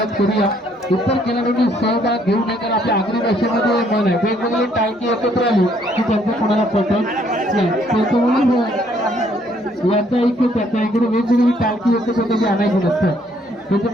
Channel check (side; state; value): both; normal; correlation 0.66